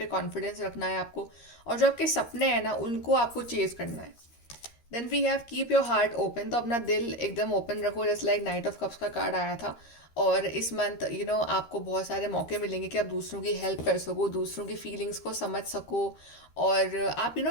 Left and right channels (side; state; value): right; late; 13 ms